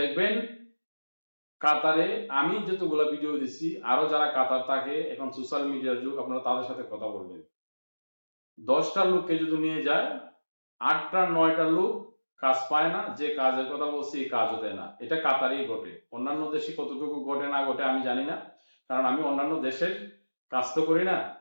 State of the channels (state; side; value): inverted; both; correlation -1.00